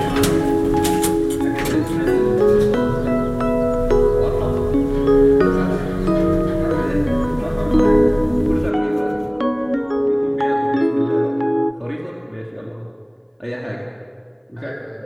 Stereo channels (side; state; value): both; identical; correlation 1.00